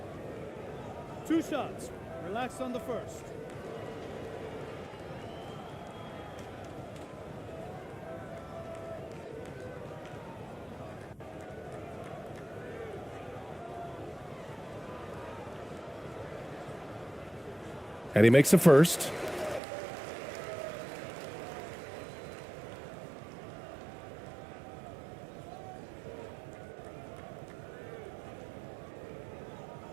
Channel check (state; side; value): drops out; left; at 19.6 s